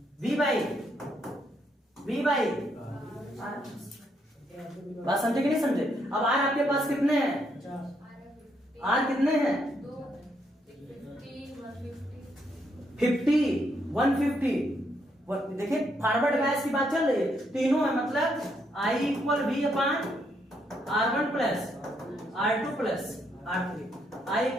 वी बाई बात समझे कि नहीं समझे। अब आर आपके पास कितने हैं, आर कितने हैं, 50 150। देखिए फॉरवर्ड बैच की बात चल रही है, तीनों है, मतलब I equal V upon R1 plus R2 plus R3, I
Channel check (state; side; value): normal; both; correlation 0.75